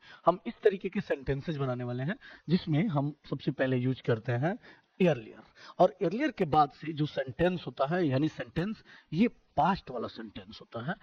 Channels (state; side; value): identical; both; correlation 1.00